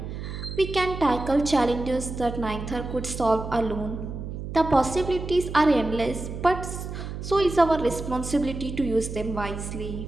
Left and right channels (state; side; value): noise; right; hum, 7 dB below the sound